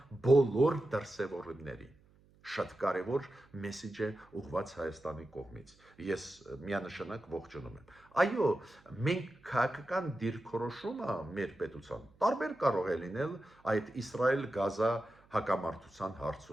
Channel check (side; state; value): right; noise; hum, 29 dB below the sound